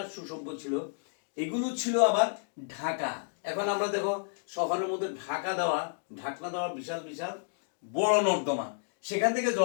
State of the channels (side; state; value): right; silent; digital silence